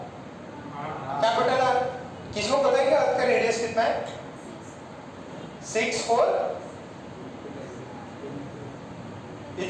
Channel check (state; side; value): identical; both; correlation 1.00